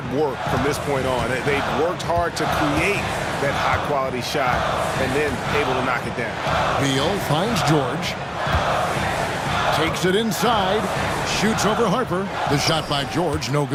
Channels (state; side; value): identical; both; correlation 1.00